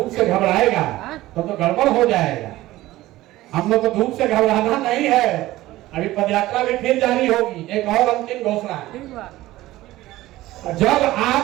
से घबराएगा तो गड़बड़ हो जाएगा। हम लोग को धूप से घबराना नहीं है। अभी पदयात्रा भी फिर जारी होगी, एक और अंतिम घोषणा है। जब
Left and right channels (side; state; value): left; quieter; 16.7 dB